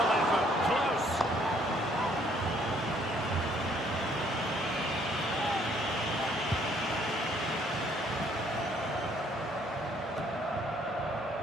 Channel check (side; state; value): both; normal; correlation 0.64